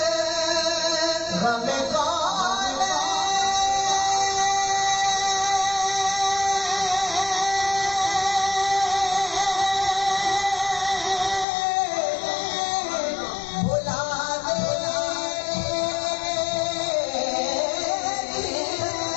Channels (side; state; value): right; drops out; at 11.5 s